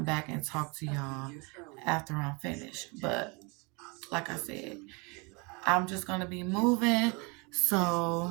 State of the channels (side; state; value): left; quieter; 29.8 dB